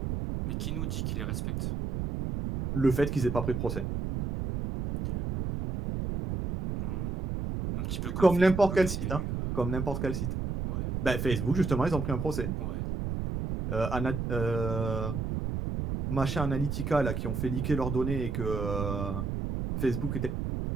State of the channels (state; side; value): noise; right; rumble, 2 dB below the sound